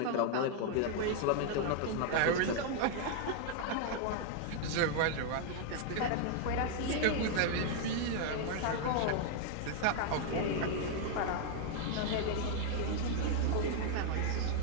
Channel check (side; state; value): both; different; correlation 0.00